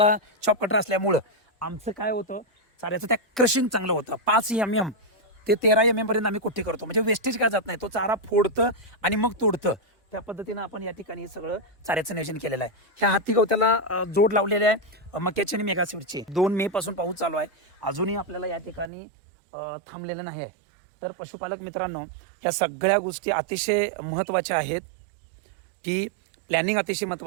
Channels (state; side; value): drops out; left; at 18.9 s